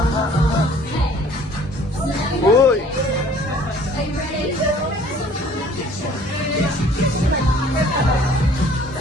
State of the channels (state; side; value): normal; both; correlation 0.54